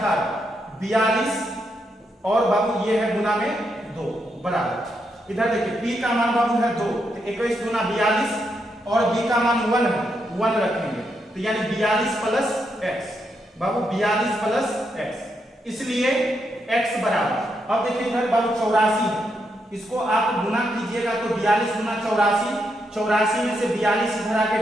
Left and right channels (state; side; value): normal; both; correlation 0.81